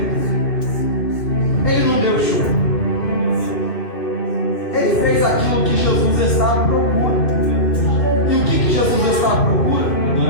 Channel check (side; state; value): right; late; 2.6 ms